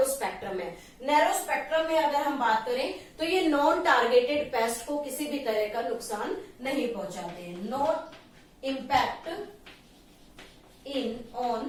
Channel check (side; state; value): both; identical; correlation 1.00